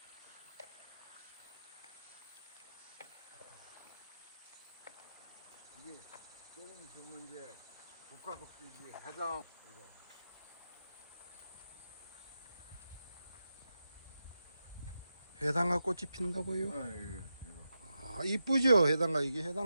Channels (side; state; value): both; inverted; correlation -0.88